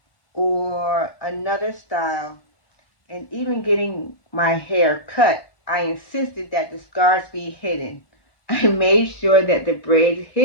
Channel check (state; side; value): late; right; 1.1 ms